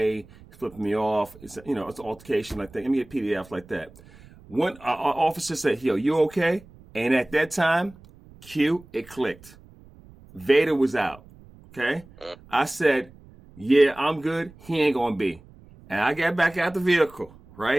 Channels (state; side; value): noise; right; rumble, 23 dB below the sound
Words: flipping me off. It's an altercation like that. Let me get PDF like that. One officer said, "Yo, you okay?" And at that time, it clicked. Vader was out. Okay, I said, "Yeah, I'm good. He ain't gonna be." And I got back out the vehicle.